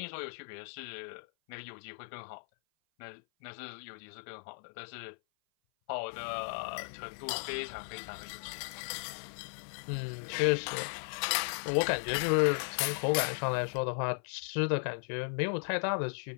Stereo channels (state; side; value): silent; right; 54 dB below the other